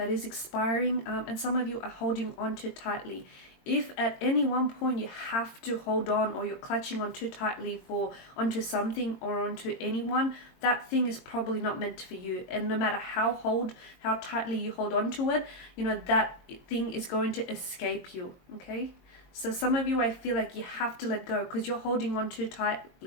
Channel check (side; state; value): right; late; 22 ms